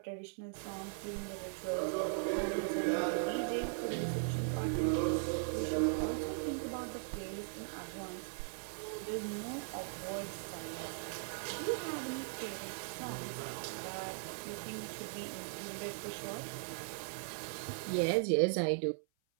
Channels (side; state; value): left; silent; 52 dB below the other